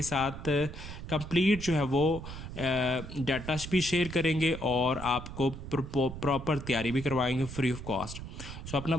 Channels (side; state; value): right; noise; rumble, 10 dB below the sound